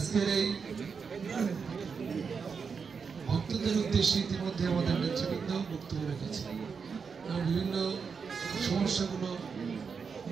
এই ভক্তদের উদ্দেশ্যে ইতিমধ্যে আমাদের নেতৃবৃন্দ বক্তব্য রেখেছে এবং বিভিন্ন সমস্যাগুলো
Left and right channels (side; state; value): left; quieter; 5.7 dB